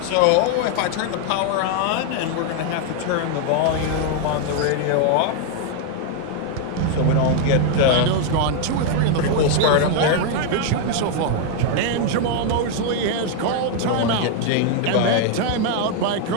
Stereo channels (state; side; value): different; both; correlation 0.00